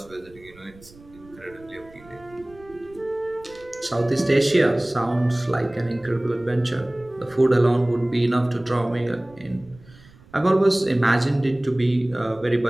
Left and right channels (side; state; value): right; noise; rumble, 24 dB below the sound